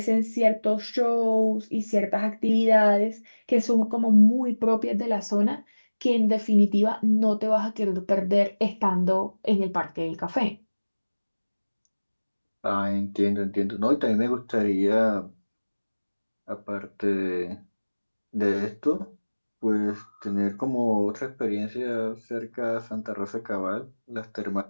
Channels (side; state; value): both; inverted; correlation -1.00